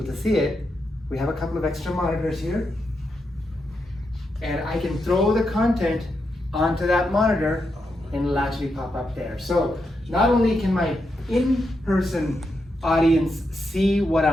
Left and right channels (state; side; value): normal; both; correlation 0.84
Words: to see it, we have a couple of extra monitors here, and I can throw the content onto that monitor and it'll actually pop up there. So not only can my in-person audience see what